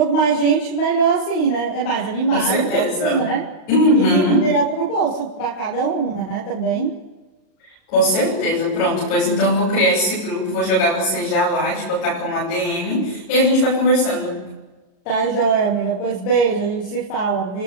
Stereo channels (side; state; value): right; late; 38 ms